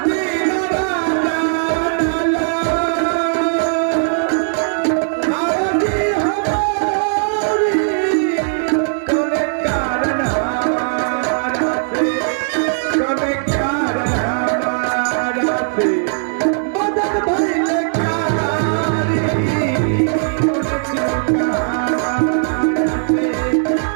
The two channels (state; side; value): silent; left; digital silence